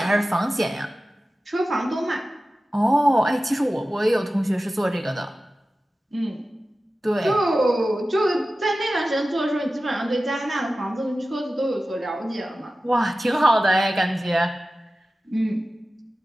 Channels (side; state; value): both; normal; correlation 0.95